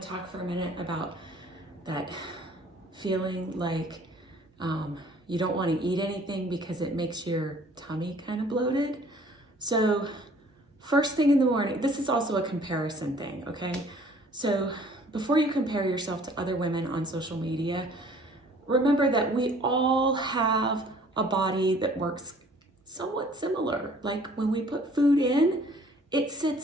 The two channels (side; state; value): both; normal; correlation 0.55